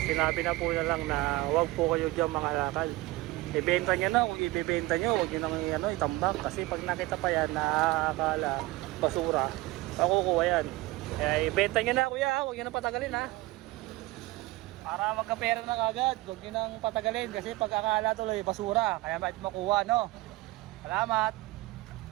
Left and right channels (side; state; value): left; quieter; 20.1 dB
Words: Sinabi na po na lang na huwag po kayo dyan mangalakal. Ibenta nyo na, kung ibibenta nyo, huwag nyo nang itambak. Kasi pag nakita pa yan, nakakala basura, makukuha yan. Kaya ibenta nyo na kuya, huwag nyo nang patagalin ha. Para magkapera na kagad, huwag nyo nang patagalin. Kasi pag akala tuloy, basura, kaya mait makuha, no? Salamat!